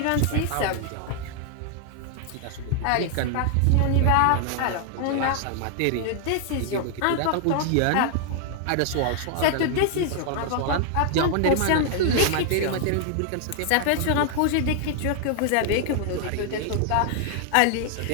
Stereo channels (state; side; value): different; both; correlation 0.00